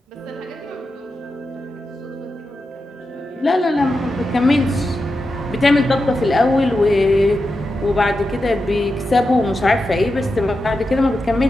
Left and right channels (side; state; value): both; normal; correlation 0.89